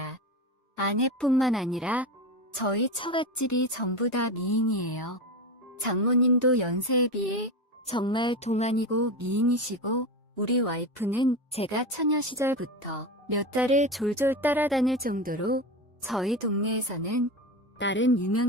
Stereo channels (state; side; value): normal; both; correlation 0.21